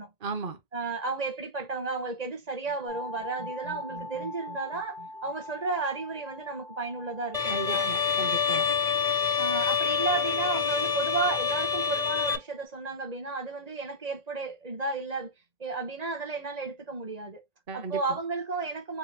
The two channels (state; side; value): late; left; 1.8 ms